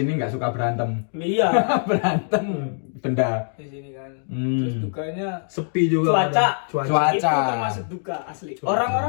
nggak suka berantem. Iya Berantem benda. di sini kan. Terus dukanya Sepi juga. cuaca. Itu Cuaca. termasuk duka asli.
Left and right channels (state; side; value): silent; right; digital silence